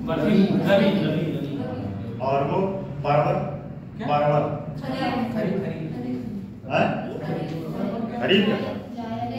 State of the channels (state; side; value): identical; both; correlation 1.00